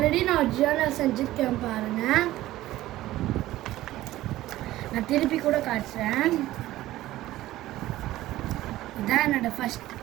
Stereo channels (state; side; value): quieter; left; 15.7 dB